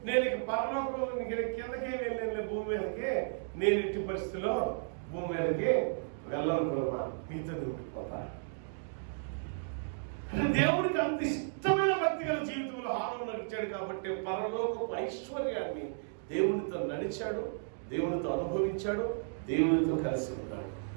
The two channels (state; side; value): silent; left; digital silence